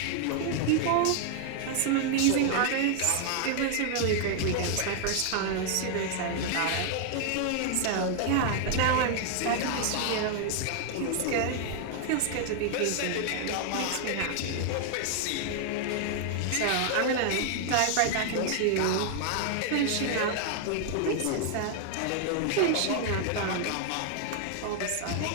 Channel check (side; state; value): both; different; correlation 0.00